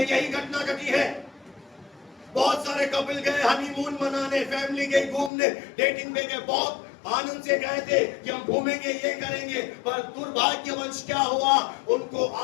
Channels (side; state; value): right; drops out; at 5.3 s